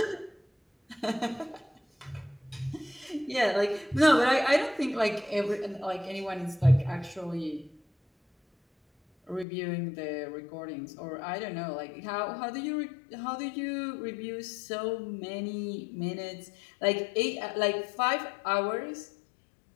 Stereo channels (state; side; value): drops out; right; at 9.5 s